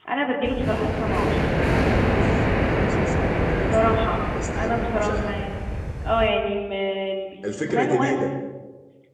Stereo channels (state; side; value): identical; both; correlation 1.00